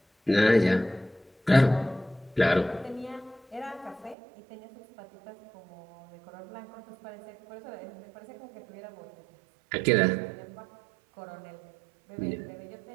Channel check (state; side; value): drops out; left; at 4.2 s